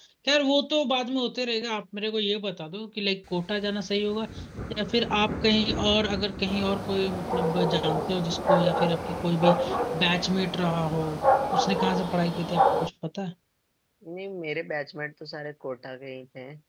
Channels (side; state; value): both; identical; correlation 1.00